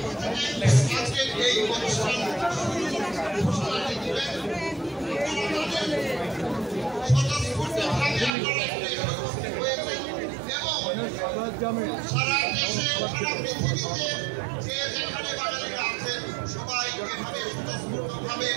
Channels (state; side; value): drops out; left; at 8.3 s